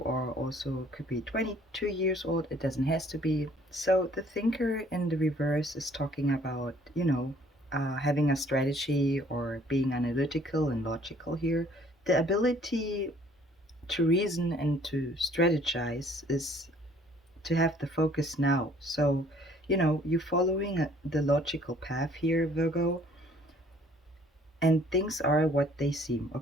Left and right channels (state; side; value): normal; both; correlation 0.58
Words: are also could be 22 years old. It doesn't has to be. So the Thinker in the reverse is talking about, having a strategy or being analytical and logical here. The ability to reason and to strategize is to have the focus now. So, you're following the logical path here, Virgo, and things are what they seem,